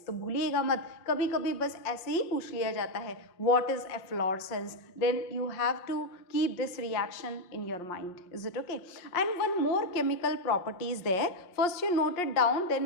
तो भूलिएगा मत, कभी कभी बस ऐसे ही पूछ लिया जाता है what is efflorescence, then you have to keep this reaction in your mind. Is it okay? And one more chemical property is there. First you note it down,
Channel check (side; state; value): right; late; 5.6 ms